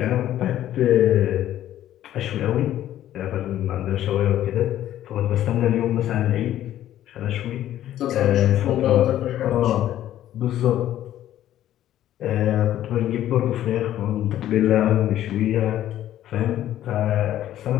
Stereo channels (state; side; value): quieter; right; 12.5 dB